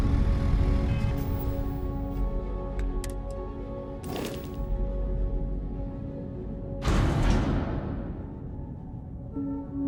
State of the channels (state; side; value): identical; both; correlation 1.00